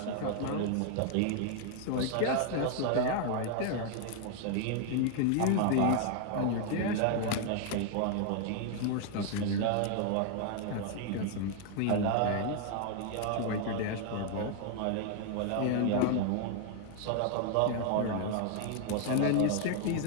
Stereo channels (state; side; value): different; both; correlation 0.00